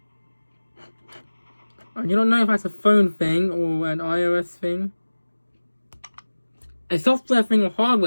I do not know if that's a phone thing or an iOS thing. A software thing or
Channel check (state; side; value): inverted; both; correlation -1.00